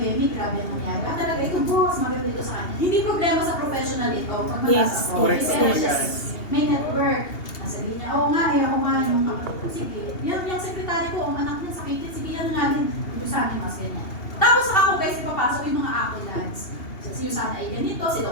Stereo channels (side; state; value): right; late; 2.8 ms